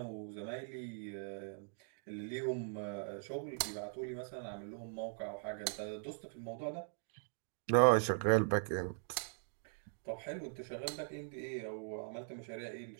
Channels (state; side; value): silent; left; digital silence